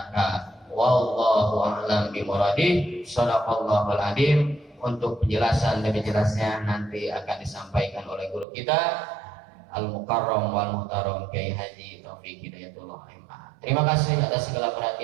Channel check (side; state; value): left; drops out; at 8.5 s